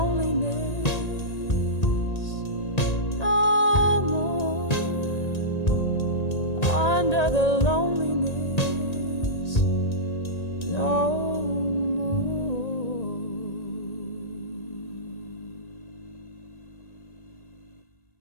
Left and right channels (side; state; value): right; late; 1.8 ms